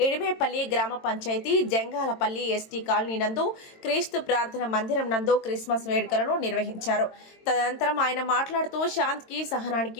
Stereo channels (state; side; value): late; right; 22 ms